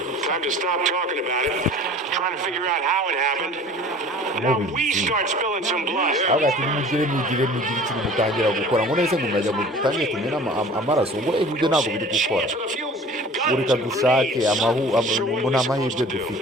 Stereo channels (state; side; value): normal; both; correlation 0.45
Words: avuga ati mugire ikintu mutangira gukora, ngo nese ngo murajya mutangire tumena amaraso, ngo ibyo ntabwo biri gukora. Reka dushake ngo nta mahirwe